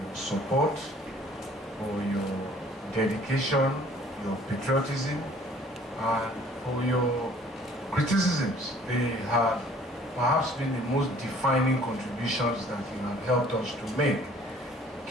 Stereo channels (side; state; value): both; normal; correlation 0.55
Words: your support, for your dedication, your patriotism, and for your criticisms. They have perhaps been the most defining contributions that you have helped us to make,